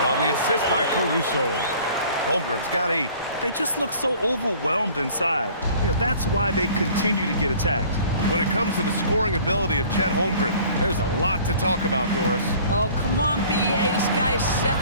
on the assist by Caruso. Holmgren's got 8. They just look so overwhelmed inside. You know, that's why they continue to get attacked. When it comes to the scoring ability of Chet Holmgren, there's a lot to talk about, Doris. Oh, come on, BA. This guy's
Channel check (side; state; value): both; inverted; correlation -0.50